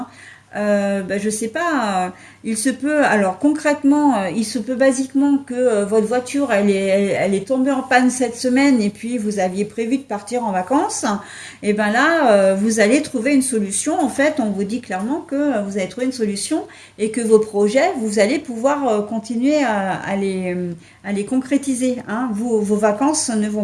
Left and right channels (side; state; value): both; identical; correlation 1.00